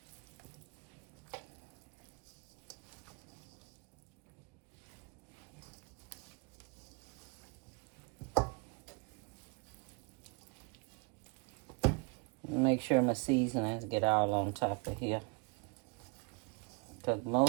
Make sure my seasonings get all on top of here. Because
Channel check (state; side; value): quieter; left; 31.6 dB